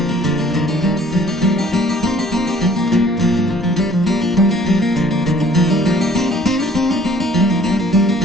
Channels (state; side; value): normal; both; correlation 0.56